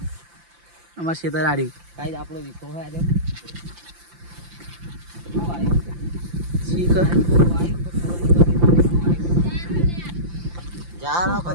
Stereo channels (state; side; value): late; left; 5.8 ms